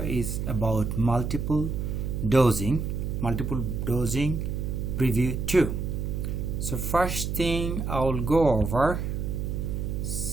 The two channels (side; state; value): right; noise; hum, 2 dB below the sound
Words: about multiple dosing preview 2. So first thing, I will go over